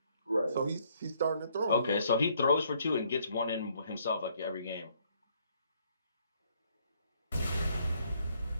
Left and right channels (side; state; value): both; inverted; correlation -0.67